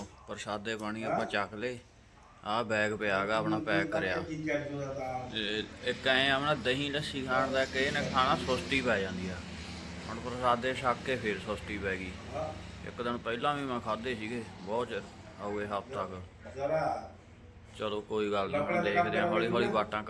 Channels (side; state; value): both; identical; correlation 1.00